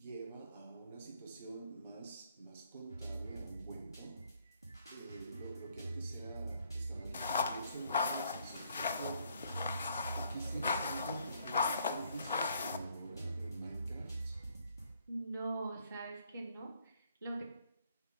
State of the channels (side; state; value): both; inverted; correlation -0.69